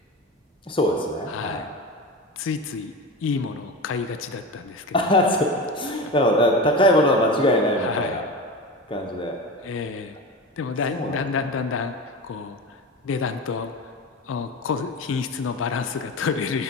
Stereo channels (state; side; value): normal; both; correlation 0.27